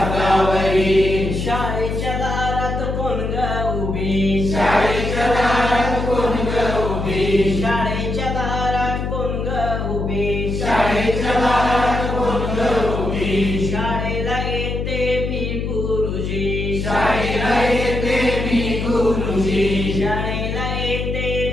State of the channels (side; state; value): left; noise; hum, 3 dB below the sound